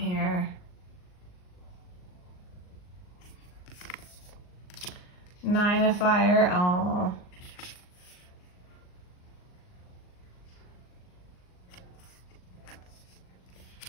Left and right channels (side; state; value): right; late; 39 ms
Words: 9 of fire, oh.